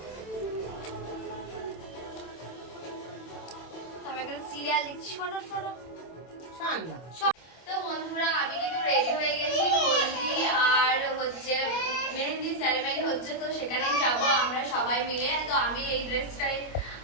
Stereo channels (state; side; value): late; right; 26 ms